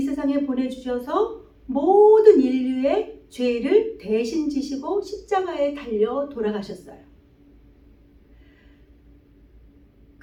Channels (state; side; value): identical; both; correlation 1.00